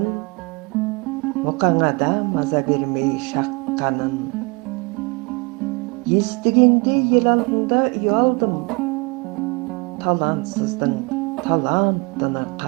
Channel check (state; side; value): quieter; left; 29.1 dB